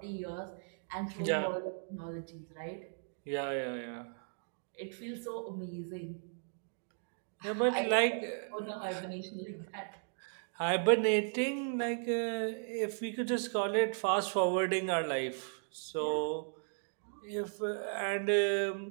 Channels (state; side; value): silent; left; digital silence